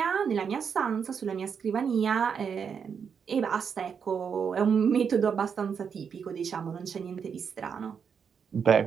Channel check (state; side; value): quieter; left; 6.8 dB